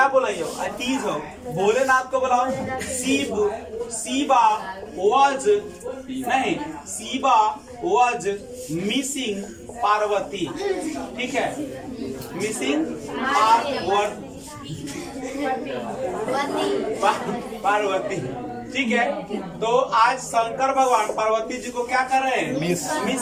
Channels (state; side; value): identical; both; correlation 1.00